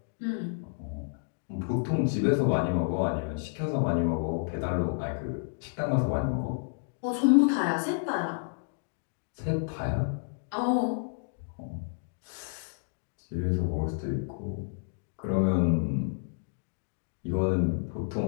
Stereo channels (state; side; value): silent; right; digital silence